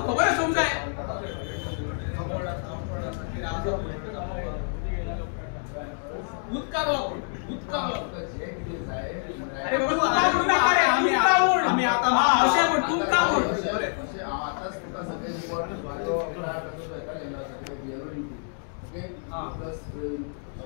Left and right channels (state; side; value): silent; right; 60 dB below the other